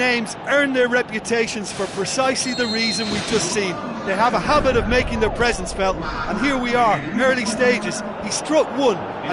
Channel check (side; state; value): both; identical; correlation 1.00